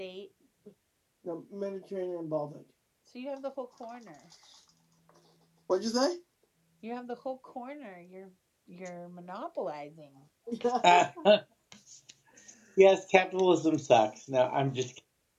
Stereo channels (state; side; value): identical; both; correlation 1.00